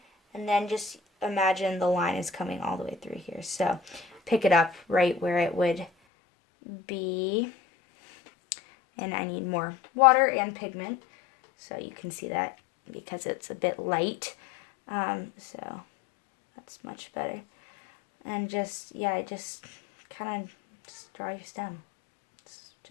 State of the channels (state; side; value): drops out; right; at 5.9 s